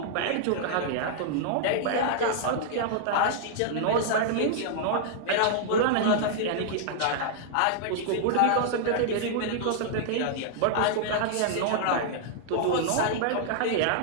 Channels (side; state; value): both; different; correlation -0.01